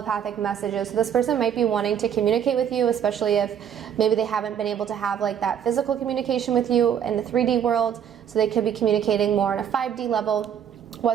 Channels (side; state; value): left; quieter; 8.8 dB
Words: messages. So this person might be wanting to communicate with you, especially if maybe they haven't been able to have like that physical communication with you in the 3D world. So they could be communicating more on a 5D level,